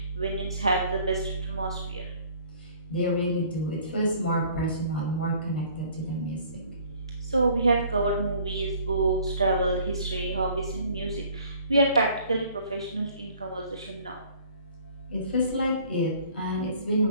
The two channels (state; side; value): inverted; both; correlation -0.55